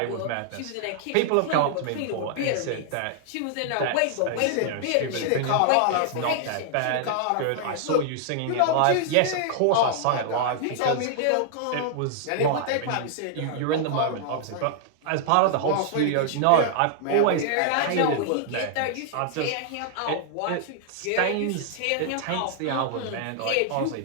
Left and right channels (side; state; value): both; different; correlation 0.00